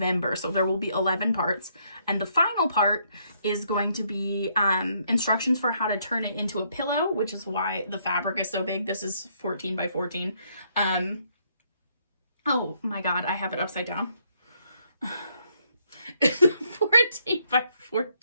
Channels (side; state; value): both; inverted; correlation -0.71